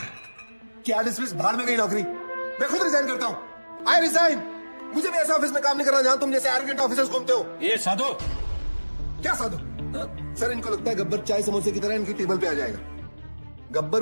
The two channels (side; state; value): both; inverted; correlation -1.00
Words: क्या डिसमिस? बाहर में गई नौकरी। मैं खुद रिजाइन करता हूं। I resign. मुझे भी ऐसे ऑफिस में काम नहीं करना जहां तुम जैसे एरोगेंट ऑफिसर्स घूमते हो। ये साधु। क्या साधु? सर, इनको लगता है गब्बर चाय समोसे की तरह इनकी टेबल पे आ जाएगा।